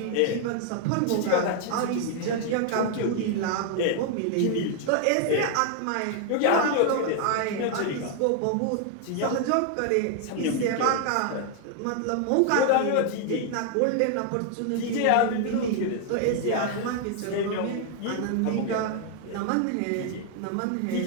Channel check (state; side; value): different; both; correlation 0.00